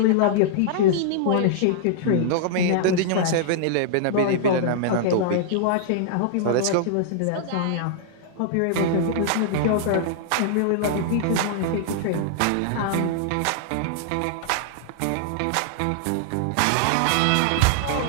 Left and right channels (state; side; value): different; both; correlation -0.01